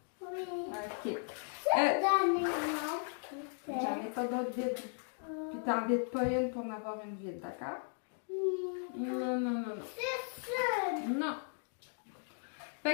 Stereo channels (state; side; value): silent; right; 53 dB below the other